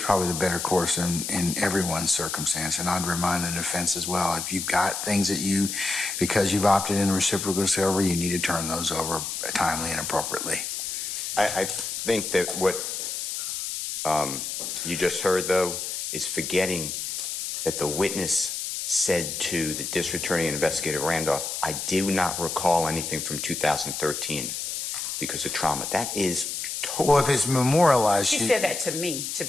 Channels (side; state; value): left; noise; hiss, 4 dB below the sound